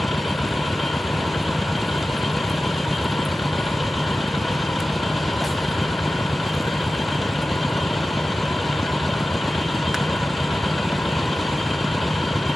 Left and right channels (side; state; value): both; normal; correlation 0.95